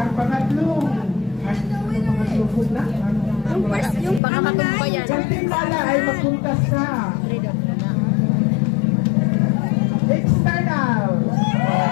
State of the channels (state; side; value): drops out; right; at 4.2 s